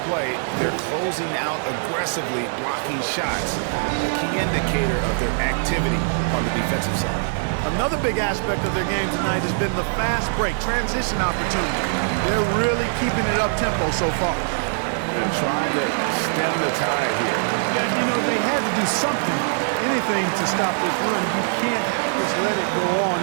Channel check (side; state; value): left; silent; 64 dB below the other